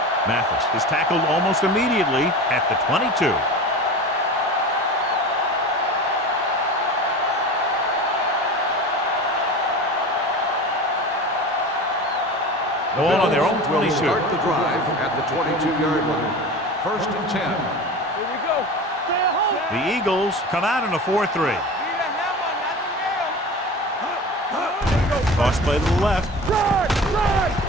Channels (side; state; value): both; normal; correlation 0.33